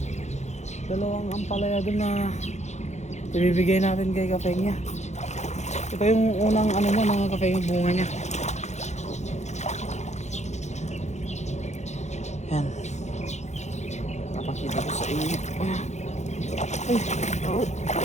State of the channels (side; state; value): right; late; 0.33 ms